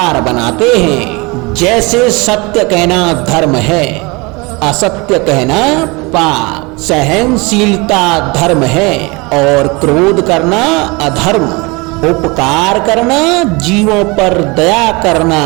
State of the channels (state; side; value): quieter; left; 26.4 dB